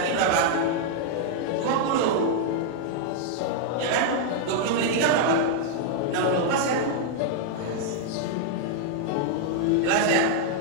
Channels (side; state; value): both; different; correlation -0.01